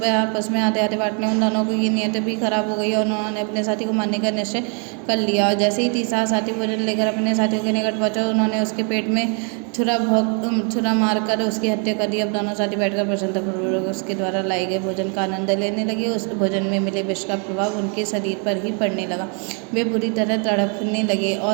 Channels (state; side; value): quieter; left; 39.1 dB